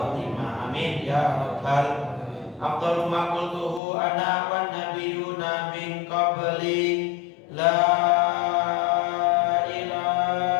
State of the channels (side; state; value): right; drops out; at 3.8 s